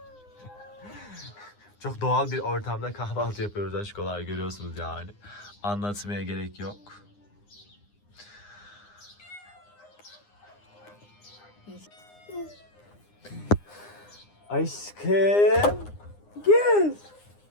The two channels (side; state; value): right; late; 9.8 ms